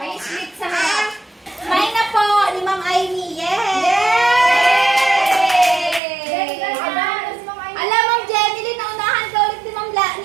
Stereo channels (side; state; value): left; drops out; at 6.0 s